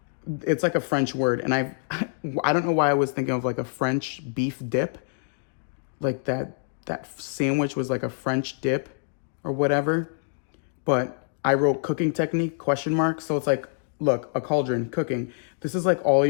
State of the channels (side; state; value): right; silent; digital silence